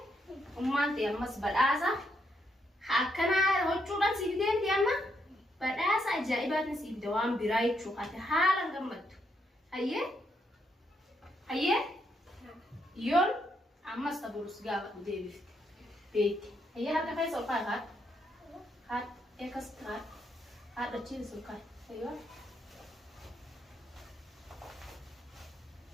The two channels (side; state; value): both; normal; correlation 0.77